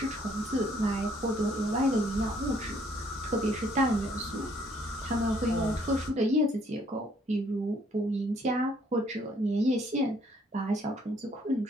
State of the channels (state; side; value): normal; both; correlation 0.65